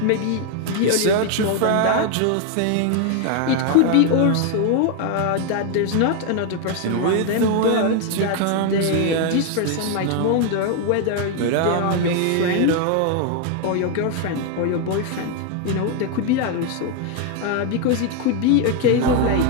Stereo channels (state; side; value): different; both; correlation 0.01